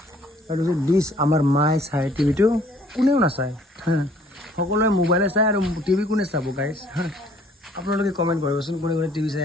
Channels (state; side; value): normal; both; correlation 0.59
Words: এইটো হৈছে ডিছ আমাৰ মায়ে চাই টিভিটো কোনেও নাচায় সকলোৱে মোবাইলে চাই আৰু টিভি কোনে চাব গাইছ আপোনালোকে কমেণ্ট কৰিবচোন কোনে টিভি চাই